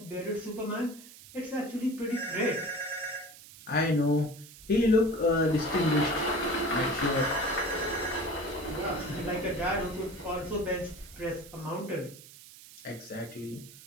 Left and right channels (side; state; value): right; noise; hiss, 18 dB below the sound